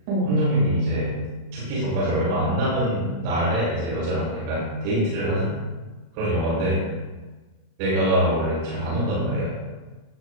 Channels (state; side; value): late; left; 37 ms